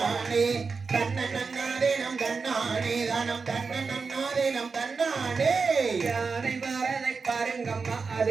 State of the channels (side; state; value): left; quieter; 4.8 dB